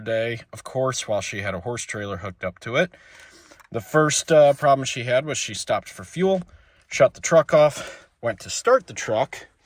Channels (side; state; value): both; identical; correlation 1.00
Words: day, of course, while she had a horse trailer hooked up to it. The first problem she had was she stopped for fuel, shut the truck off, went to start the truck,